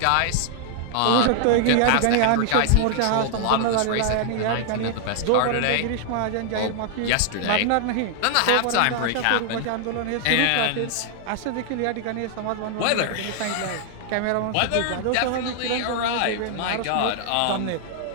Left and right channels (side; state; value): both; different; correlation 0.00